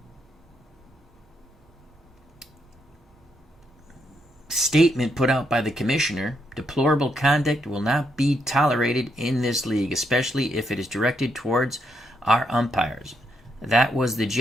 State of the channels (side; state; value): both; normal; correlation 0.77